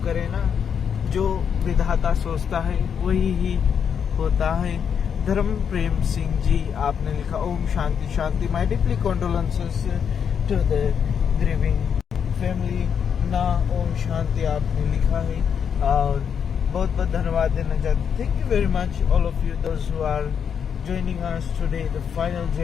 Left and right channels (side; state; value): right; quieter; 7.4 dB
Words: करें ना। जो विधाता सोचता है वही ही होता है। धर्म प्रेम सिंह जी, आपने लिखा ओम शांति शांति। My deeply condolences to the grieving family ना। ओम शांति आपने लिखा है और बहुत बहुत धन्यवाद देना चाहते। Thank you very much all of you those who are joining us today, the final